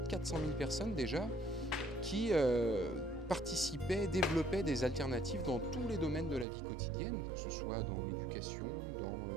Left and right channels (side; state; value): left; drops out; at 6.5 s